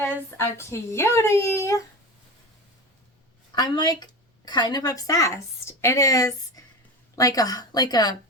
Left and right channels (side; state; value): both; normal; correlation 0.27